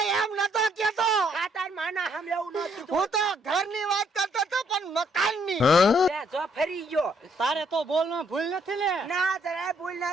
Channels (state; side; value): normal; both; correlation 0.69